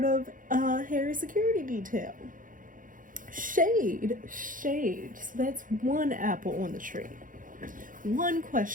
of Harry's security detail. Shade. So that's one apple on the tree. One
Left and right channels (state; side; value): late; left; 0.39 ms